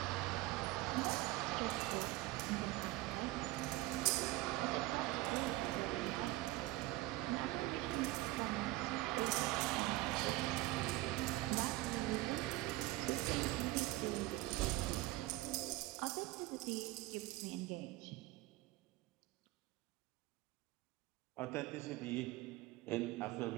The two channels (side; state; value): left; quieter; 18.8 dB